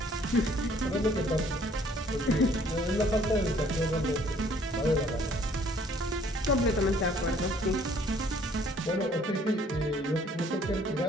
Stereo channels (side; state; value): both; normal; correlation 0.60